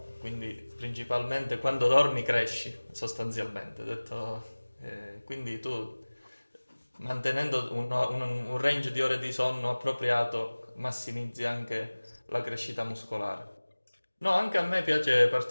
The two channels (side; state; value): both; inverted; correlation -1.00